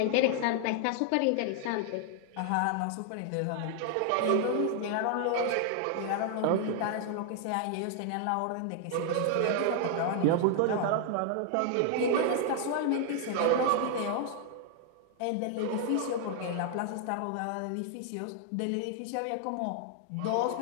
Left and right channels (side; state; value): both; different; correlation 0.00